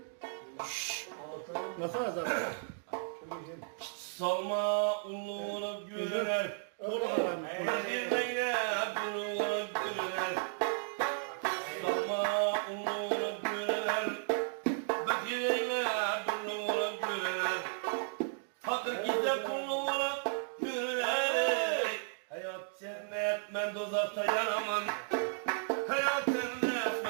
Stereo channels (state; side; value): silent; left; digital silence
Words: Nasıl azar? Salma unlu olup görüner. Fakirliğe dulu olup görüner. Salma unlu olup görüner. Fakirliğe dulu olup görüner. Fakir gizle pullu olup görüner. Hayat cennet ben dozakta yanamam. Hayat cennet